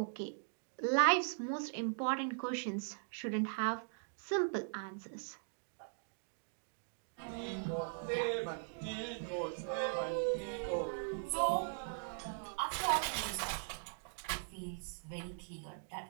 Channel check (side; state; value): left; silent; digital silence